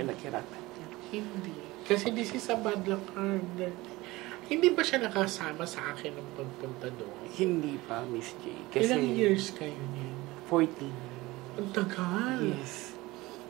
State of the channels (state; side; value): quieter; left; 20.2 dB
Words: niya. Hindi. Kasi this is a bad luck card. Hindi ba siya nakasama sa akin ng pagpunta doon? Hindi pa, Miss J. Kasi Ilang years kayo niyan? 14. Ang tagal. Yes.